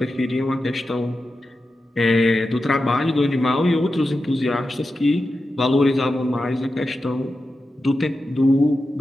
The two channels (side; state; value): both; normal; correlation 0.91